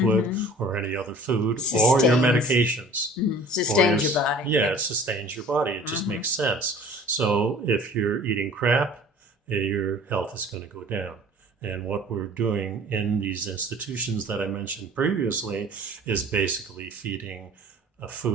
or any other food or your medications. Mm-hmm. Sustains your body. Yeah, it sustains your body. It just makes sense. So if you're eating crap, your health is going to go down. And what we're doing in these institutions that I mentioned previously is basically feeding a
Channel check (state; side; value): normal; both; correlation 0.47